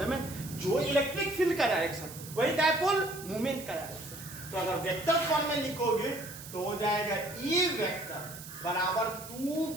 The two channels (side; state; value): right; noise; hiss, 13 dB below the sound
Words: है? जो इलेक्ट्रिक फील्ड का डायरेक्शन वही डायपोल मूवमेंट का डायरेक्शन। तो अगर वेक्टर फॉर्म में लिखोगे तो हो जाएगा E वेक्टर बराबर